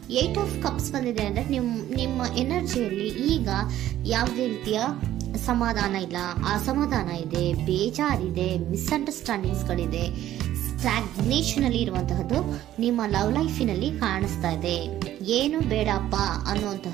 8 ಆಫ್ ಕಪ್ಸ್ ಬಂದಿದೆ ಅಂದ್ರೆ ನಿಮ್ಮ ಎನರ್ಜಿಯಲ್ಲಿ ಈಗ ಯಾವುದೇ ರೀತಿಯ ಸಮಾಧಾನ ಇಲ್ಲ, ಅಸಮಾಧಾನ ಇದೆ, ಬೇಜಾರಿದೆ, ಮಿಸ್ಅಂಡರ್ಸ್ಟ್ಯಾಂಡಿಂಗ್ಸ್ಗಳಿದೆ, ಸ್ಟಾಗ್ನೇಷನ್ ಅಲ್ಲಿ ಇರುವಂತಹದ್ದು ನಿಮ್ಮ ಲವ್ ಲೈಫಿನಲ್ಲಿ ಕಾಣಿಸ್ತಾ ಇದೆ. ಏನು ಬೇಡಪ್ಪ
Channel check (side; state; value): left; quieter; 12.9 dB